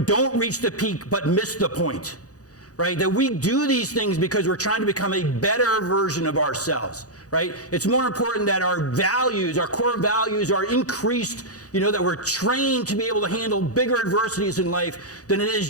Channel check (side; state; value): right; late; 0.67 ms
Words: reach the peak, but miss the point, right? That we do these things because we're trying to become a better version of ourselves, right? It's more important that our values, our core values are increased, that we're trained to be able to handle bigger adversities in life than it is